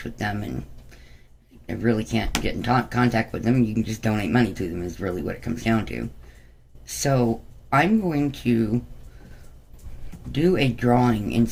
with them and I really can't get in contact with them. You can just donate money to them is really what it comes down to. So I'm going to do a drawing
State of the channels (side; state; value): both; identical; correlation 1.00